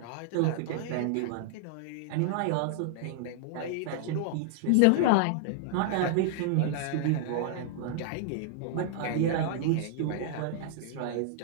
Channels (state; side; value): different; both; correlation -0.01